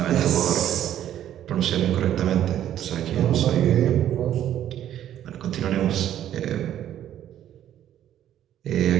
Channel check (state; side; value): quieter; left; 11.3 dB